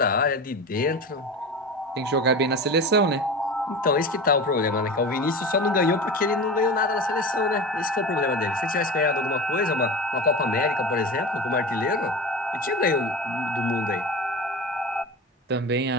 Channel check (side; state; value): both; normal; correlation 0.29